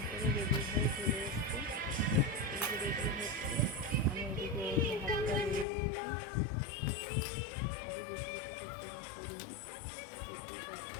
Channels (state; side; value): drops out; right; at 5.7 s